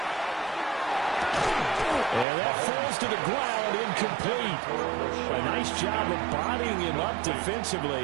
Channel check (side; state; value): left; drops out; at 2.2 s